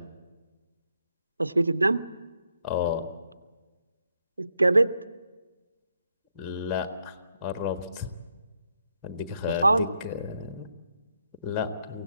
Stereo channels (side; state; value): both; inverted; correlation -0.79